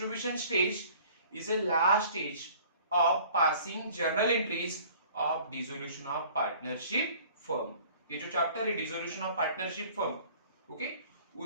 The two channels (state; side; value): inverted; both; correlation -0.50